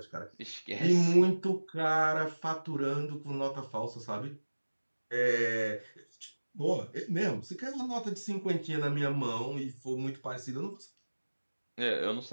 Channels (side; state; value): both; inverted; correlation -1.00